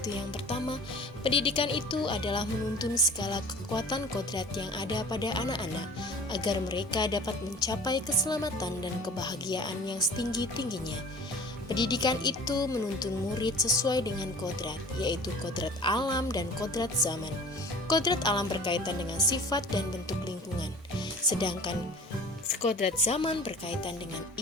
yang pertama, pendidikan itu adalah menuntun segala kekuatan kodrat yang ada pada anak-anak agar mereka dapat mencapai keselamatan dan kebahagiaan yang setinggi-tingginya. Pendidikan itu menuntun murid sesuai dengan kodrat, yaitu kodrat alam dan kodrat zaman. Kodrat alam berkaitan dengan sifat dan bentuk lingkungan, sedangkan kodrat zaman berkaitan dengan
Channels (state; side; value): normal; both; correlation 0.43